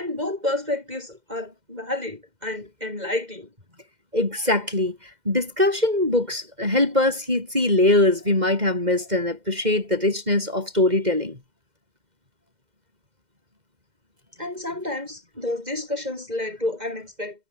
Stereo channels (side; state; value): left; late; 2.1 ms